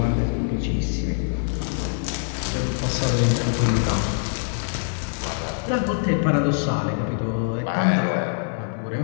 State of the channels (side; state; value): right; silent; digital silence